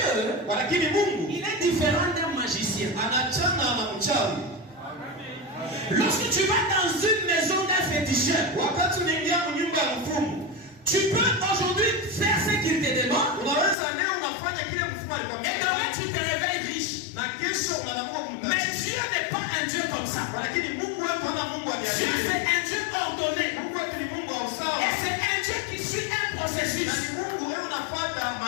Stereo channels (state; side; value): drops out; right; at 13.8 s